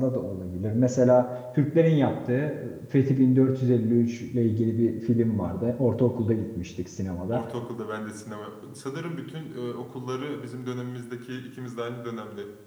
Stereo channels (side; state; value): both; identical; correlation 1.00